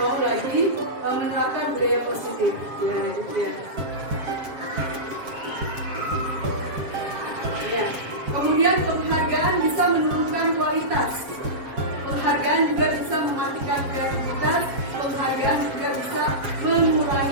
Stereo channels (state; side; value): late; left; 7.4 ms